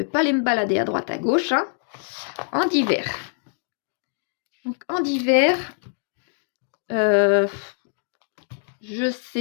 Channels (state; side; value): silent; right; digital silence